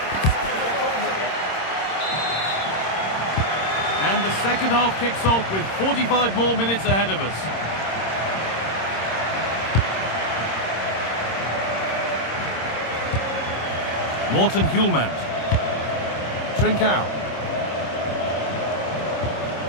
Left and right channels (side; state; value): right; late; 26 ms